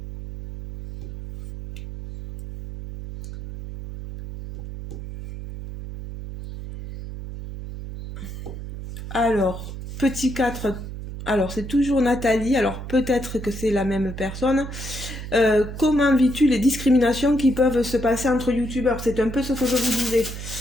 Alors, petit 4. Alors c'est toujours Nathalie, alors peut-être que c'est la même personne. Comment vis-tu les discriminations qui peuvent se passer entre youtubeurs? C'est un peu ce que je vous disais.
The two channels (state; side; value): noise; right; hum, 9 dB below the sound